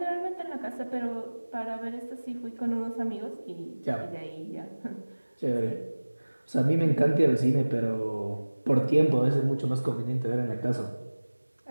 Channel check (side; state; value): both; inverted; correlation -1.00